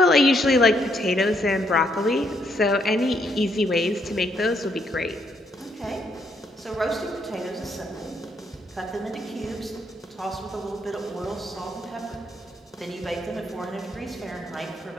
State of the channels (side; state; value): both; normal; correlation 0.73